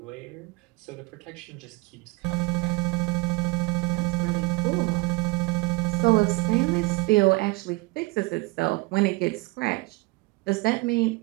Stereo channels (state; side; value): quieter; left; 24.2 dB